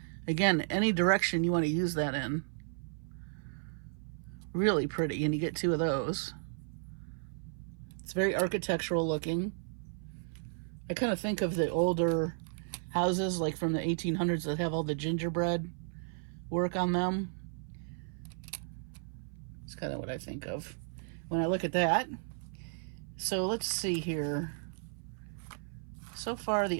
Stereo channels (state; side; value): silent; left; 55 dB below the other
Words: Again, any direction you want to use that in. Really pretty, and you get 2 of those. It's very architectural looking. I kind of think of the older houses, like from the 1800s, that have all the gingerbread work on them. It's kind of what I think of when I look at that. So let's see here. So far,